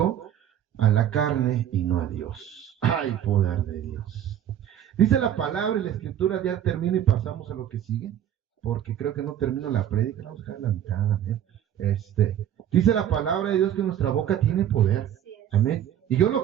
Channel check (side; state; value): left; quieter; 10.5 dB